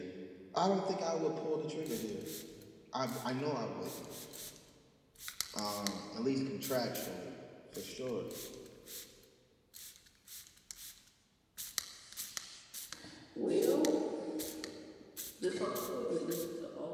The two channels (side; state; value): both; identical; correlation 1.00